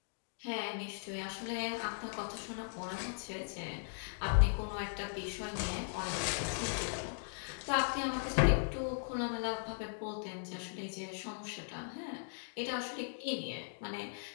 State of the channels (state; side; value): silent; right; digital silence